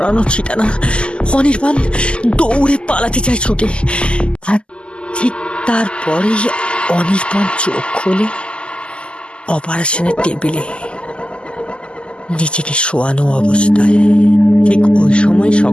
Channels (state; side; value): late; right; 0.051 ms